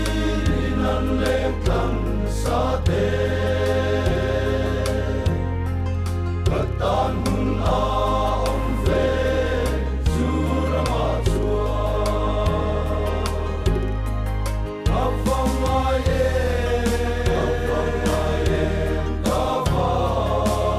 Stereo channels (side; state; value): both; identical; correlation 1.00